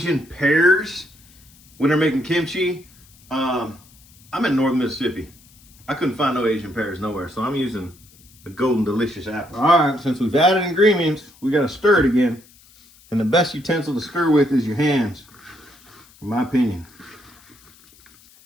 pears when they're making kimchi. I'm in northern Mississippi. I couldn't find no Asian pears nowhere, so I'm using a golden delicious apple. All right, since we've added ingredients, we gotta stir it again. And the best utensil to stir with is your hands, in my opinion.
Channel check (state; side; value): noise; left; hiss, 27 dB below the sound